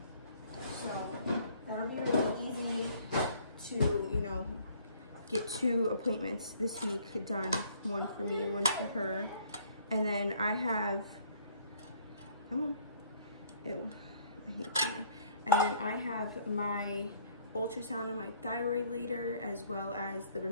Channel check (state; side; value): inverted; both; correlation -0.60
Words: So that'll be really easy to, you know, get 2 appointments this week done. One for me, one for her. And then I have, come on, ew, I hate that. And then I have my ultrasound of my thyroid later, as well as the